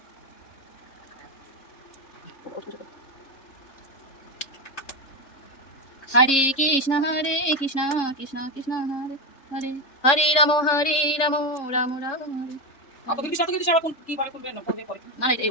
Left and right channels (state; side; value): late; right; 3.6 ms